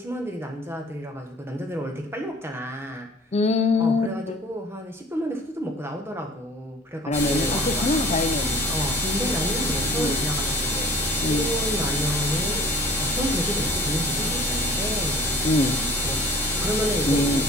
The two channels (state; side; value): normal; both; correlation 0.49